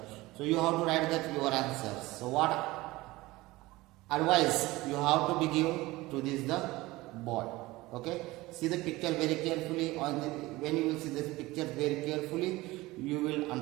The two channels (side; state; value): left; quieter; 19.8 dB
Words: So you have to write that your answers. So what advice you have to be give to this the boy? Okay, see the picture very carefully. When you will see this picture very carefully, you will